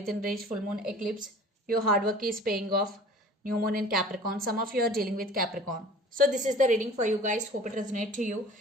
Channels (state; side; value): normal; both; correlation 0.45